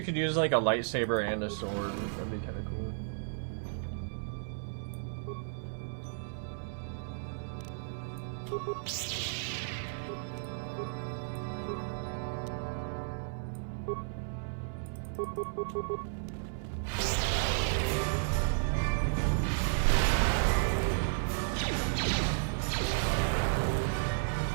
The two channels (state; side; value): silent; left; 55 dB below the other